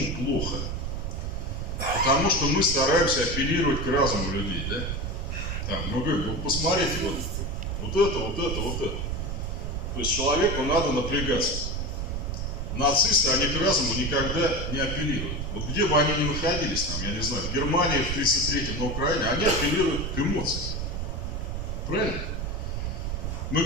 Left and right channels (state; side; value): noise; right; rumble, 3 dB below the sound